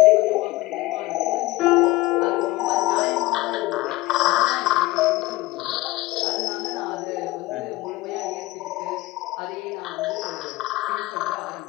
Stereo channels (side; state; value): right; quieter; 19.2 dB